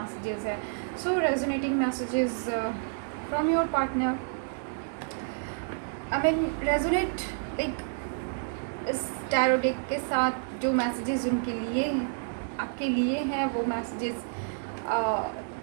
है। So resonating messages from your partner, I mean resonate like इस टैरो डेक के साथ जो मैसेजेस उनके लिए आपके लिए हैं, वो मैसेजेस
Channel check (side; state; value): left; silent; digital silence